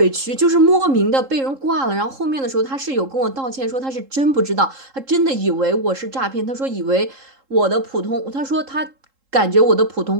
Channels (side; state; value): left; late; 3.7 ms